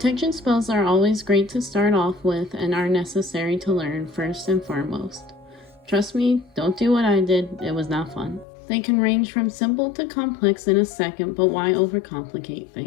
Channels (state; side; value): drops out; right; at 8.5 s